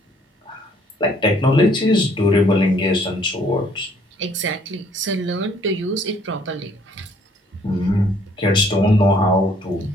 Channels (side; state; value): both; normal; correlation 0.62